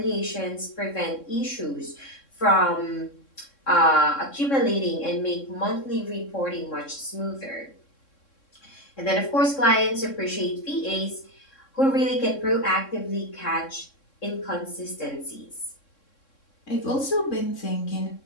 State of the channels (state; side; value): late; right; 3.6 ms